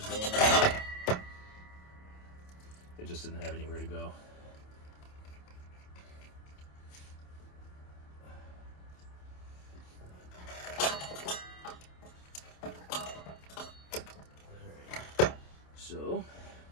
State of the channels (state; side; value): late; right; 27 ms